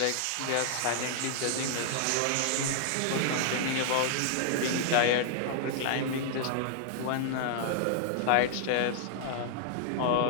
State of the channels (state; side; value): different; both; correlation -0.01